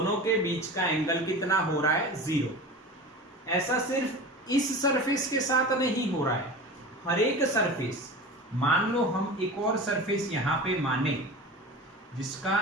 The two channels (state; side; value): normal; both; correlation 0.33